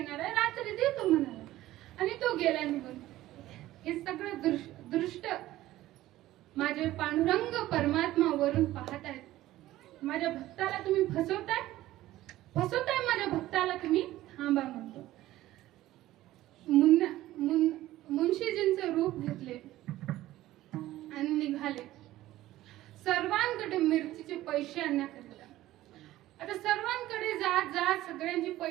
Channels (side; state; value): left; quieter; 15.4 dB